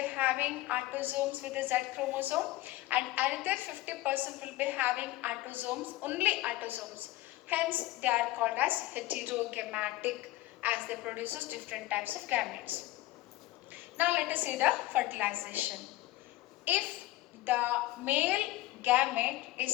having autosomes with the Z chromosome and another 50% will be having autosomes, only autosomes. Hence, they are called as heterogamatic as they produces different types of gametes. Now, let us see the fertilization. If the male gamete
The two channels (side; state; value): right; quieter; 17.4 dB